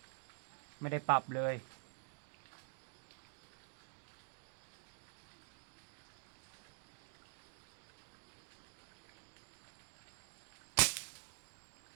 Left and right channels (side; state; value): left; silent; digital silence